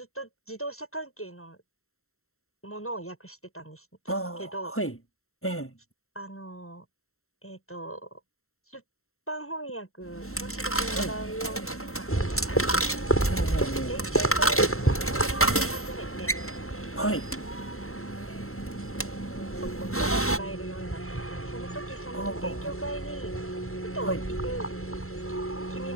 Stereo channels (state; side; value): late; right; 0.63 ms